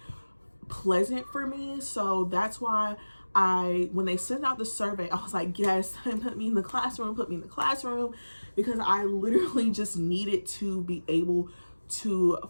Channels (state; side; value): inverted; both; correlation -1.00